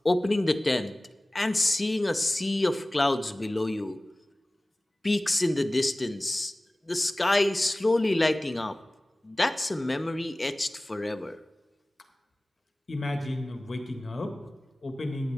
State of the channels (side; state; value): both; normal; correlation 0.98